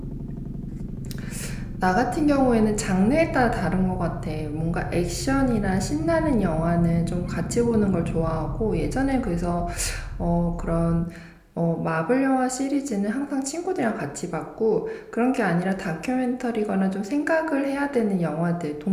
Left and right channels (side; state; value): both; identical; correlation 1.00